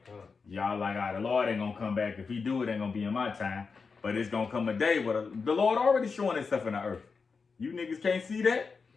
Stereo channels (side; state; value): right; quieter; 5.0 dB